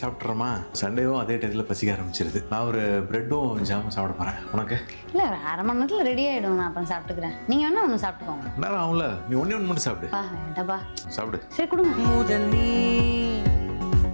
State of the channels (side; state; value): both; inverted; correlation -1.00